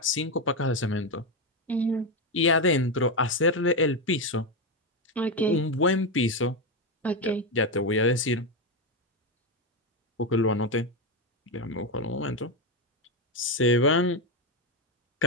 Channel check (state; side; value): normal; both; correlation 0.10